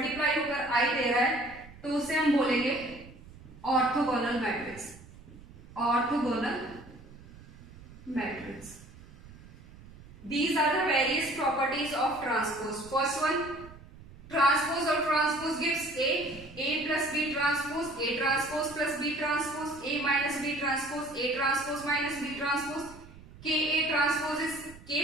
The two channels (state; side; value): noise; right; rumble, 19 dB below the sound